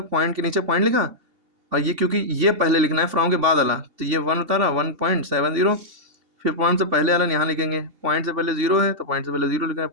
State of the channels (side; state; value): left; late; 2.7 ms